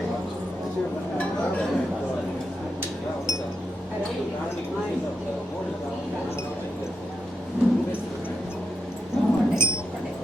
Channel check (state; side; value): normal; both; correlation 0.84